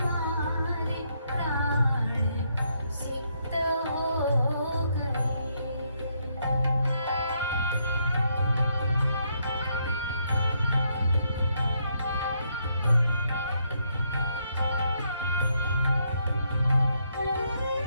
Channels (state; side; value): inverted; both; correlation -0.75